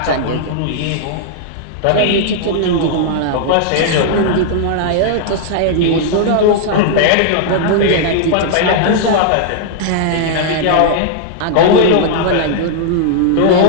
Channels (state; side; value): different; both; correlation -0.01